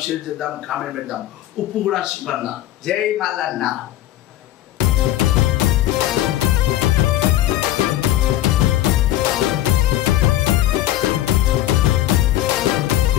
షేర్ చేద్దాం, కామెంట్ పెడదాం. ఉప్పు కూడా శివన్న. జై మల్లన్న.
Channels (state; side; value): quieter; right; 13.6 dB